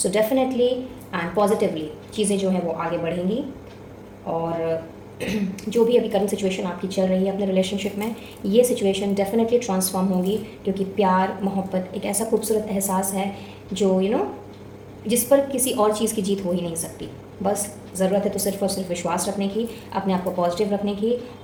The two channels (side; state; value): both; identical; correlation 1.00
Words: डेफिनेटली एंड पॉजिटिवली चीज़ें जो हैं वो आगे बढ़ेंगी और जो भी अभी करंट सिचुएशन आपकी चल रही है अपने रिलेशनशिप में, ये सिचुएशन डेफिनेटली ट्रांसफॉर्म होगी, क्योंकि प्यार मोहब्बत एक ऐसा खूबसूरत एहसास है जो जिस पर किसी और चीज़ की जीत हो ही नहीं सकती। बस ज़रूरत है तो सिर्फ और सिर्फ विश्वास रखने की, अपने आप को पॉजिटिव रखने की